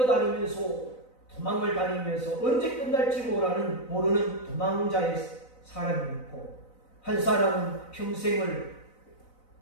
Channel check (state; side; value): late; right; 4.0 ms